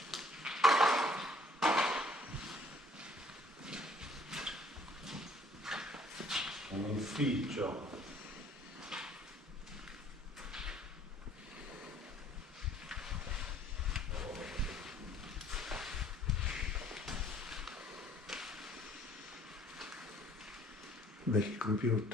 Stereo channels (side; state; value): both; normal; correlation 0.58